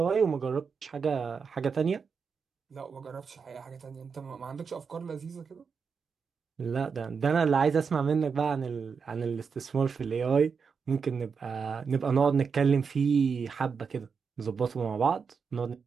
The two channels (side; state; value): left; quieter; 5.8 dB